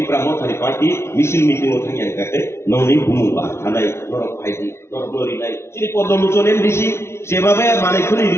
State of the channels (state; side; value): late; right; 0.13 ms